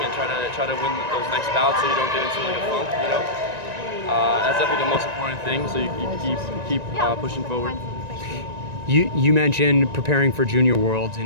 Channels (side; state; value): left; late; 1.9 ms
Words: try to win those next bouts so you don't get into like a funk, That's definitely the most important thing. So you keep pushing forward. You mentioned preparing for Junior Worlds